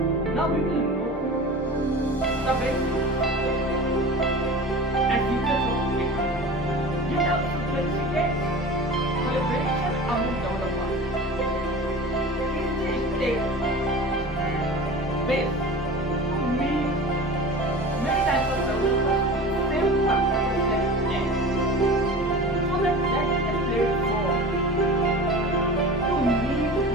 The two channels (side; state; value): both; normal; correlation 0.35